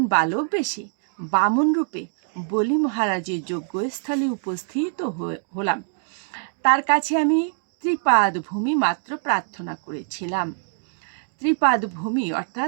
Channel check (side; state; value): left; silent; digital silence